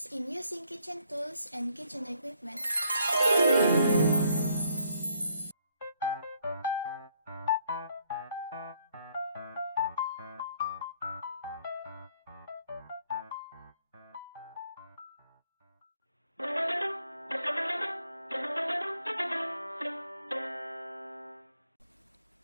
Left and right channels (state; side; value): inverted; both; correlation -0.68